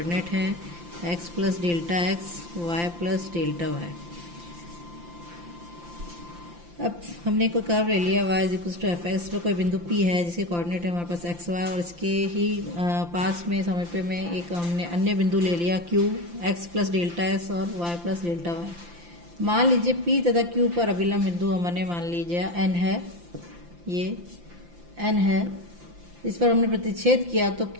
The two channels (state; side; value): late; left; 5.8 ms